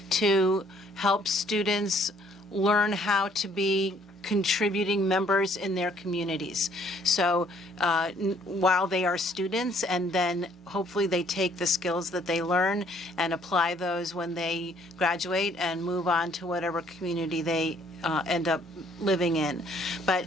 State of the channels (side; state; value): both; normal; correlation 0.63